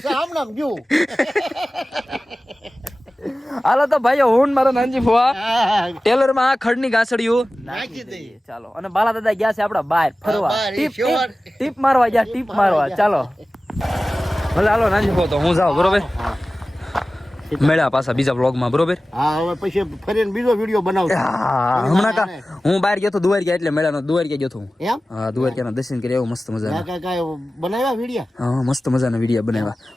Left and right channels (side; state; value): both; normal; correlation 0.96